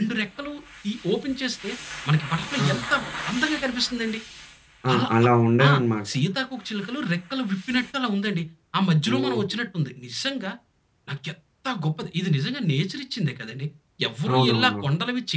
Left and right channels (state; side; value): identical; both; correlation 1.00